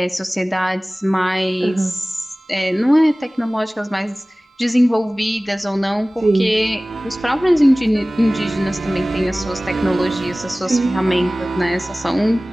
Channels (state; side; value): normal; both; correlation 0.98